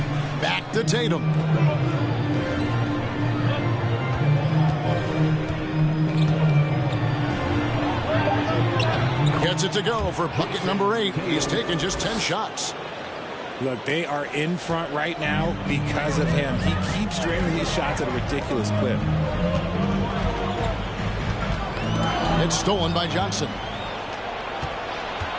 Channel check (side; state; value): both; identical; correlation 1.00